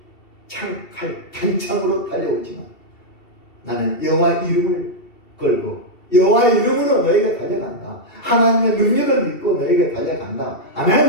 창칼 단창으로 달려오지만 나는 여호와 이름을 걸고 여호와 이름으로 너희가 달려간다. 하나님의 능력을 믿고 너희가 달려간다.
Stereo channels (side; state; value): right; late; 2.7 ms